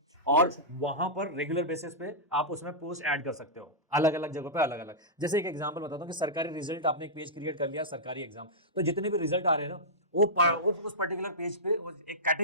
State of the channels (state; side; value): normal; both; correlation -0.13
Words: और वहां पर रेगुलर बेसिस पे आप उसमें पोस्ट ऐड कर सकते हो, अलग अलग जगहों पे अलग अलग। जैसे एक एग्जांपल बताता हूँ कि सरकारी रिजल्ट, आपने एक पेज क्रिएट कर लिया सरकारी एग्जाम, तो जितने भी रिजल्ट आ रहे हैं ना वो उस पर्टिकुलर पेज पे एक